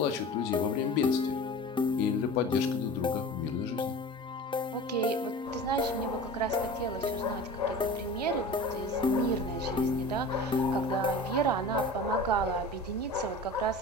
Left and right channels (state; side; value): normal; both; correlation 0.37